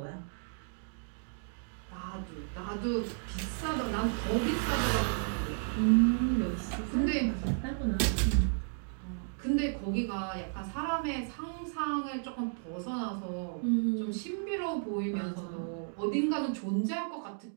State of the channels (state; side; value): silent; left; digital silence